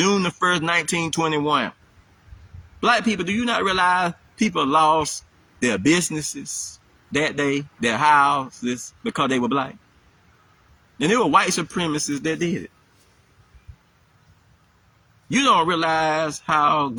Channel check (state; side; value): identical; both; correlation 1.00